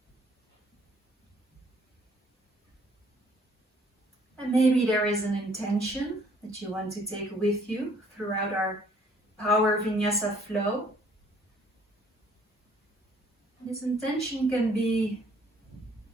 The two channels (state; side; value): normal; both; correlation 0.60